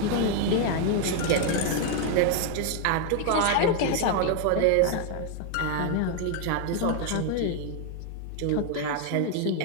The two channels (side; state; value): both; different; correlation 0.01